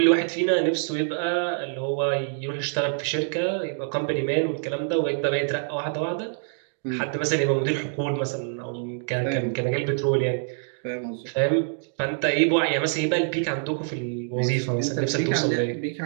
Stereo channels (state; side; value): silent; left; digital silence